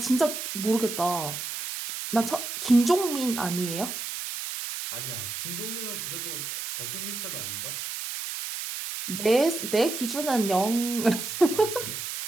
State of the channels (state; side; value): noise; right; hiss, 6 dB below the sound